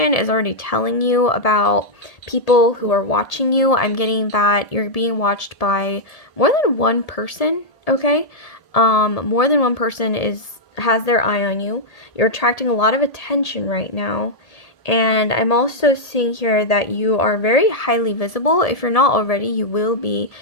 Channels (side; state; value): right; late; 1.8 ms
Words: is already telling you about people who are watching you. I'm getting that you're being watched by more than one person, okay? More than one person has their eye on you. You're attracting a lot of attention right now. And I'm also seeing here that you are very highly visible. If you're not already, you will be